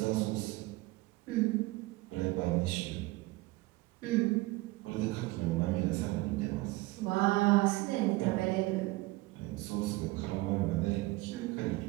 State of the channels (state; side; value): quieter; left; 20.9 dB